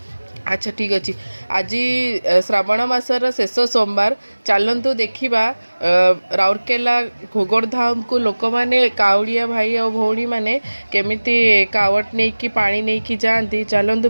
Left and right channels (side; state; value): both; inverted; correlation -1.00